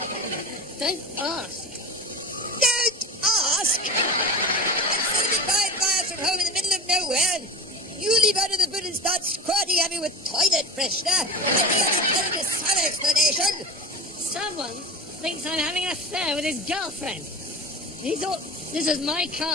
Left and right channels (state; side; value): normal; both; correlation 0.31